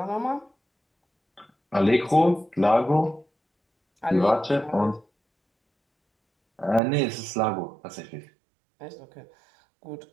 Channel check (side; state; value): left; drops out; at 6.8 s